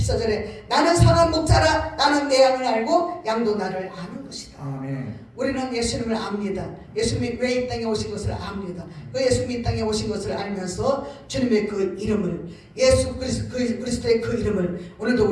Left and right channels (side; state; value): both; identical; correlation 1.00